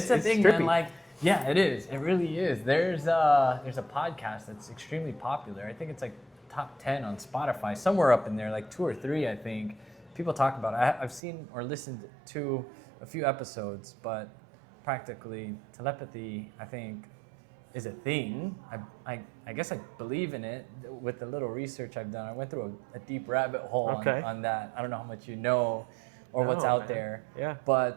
a thing, trippy. man. Like, yeah, it is. It really is. There's a podcast that's extremely popular. I think it's like top 10 on Spotify, somewhere up in there, like 2 or 3, I think. People talk about it. I've seen or listened to a few episodes, but practically telepathy, I think, is a thing. I guess I believe in it with the little research I've done. I went through a deep rabbit hole on that. I don't know how much you know or what's out there. Yeah.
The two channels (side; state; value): left; drops out; at 11.2 s